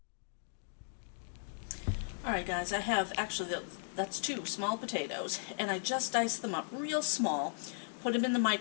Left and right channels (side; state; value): right; silent; digital silence